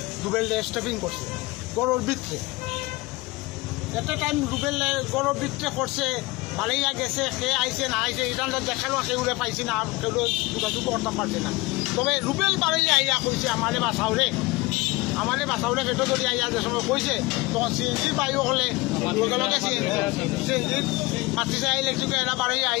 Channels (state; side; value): quieter; right; 22.4 dB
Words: রুবেল স্টেপিং করছে গরুর ভিতরে একটা টাইম রুবেল গরুর ভিতরে করছে ভালোইয়া গেছে সে আইসে না আইসে এটা দেখালো সেগুলো পাইছি না আর কেউ যোগাযোগ করতে পারছে না তবে রুবেল বাড়ি আইয়া কইছে আমারে বাসাউরে পেটো ধরি আইয়া যে সময় কইছে তখন সিএনজি বাইও হলে লগে লগে সিএনজি মাতিছে ইলেকট্রিক এরা বাড়ি